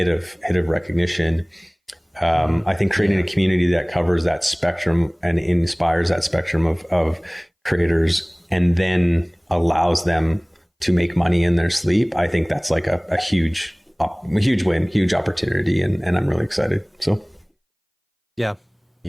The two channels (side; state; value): both; identical; correlation 1.00